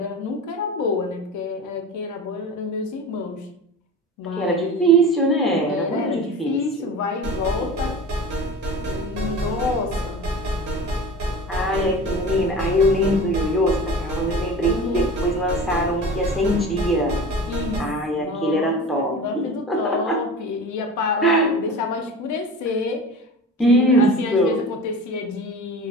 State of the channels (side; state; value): both; normal; correlation 0.34